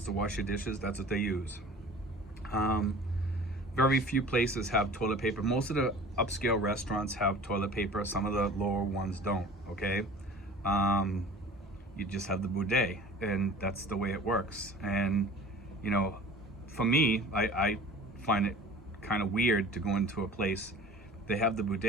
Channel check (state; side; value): normal; both; correlation 0.43